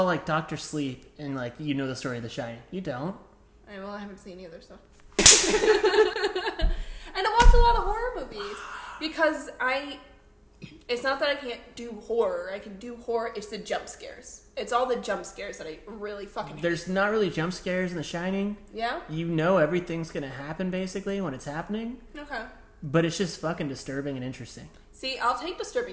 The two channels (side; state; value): both; identical; correlation 1.00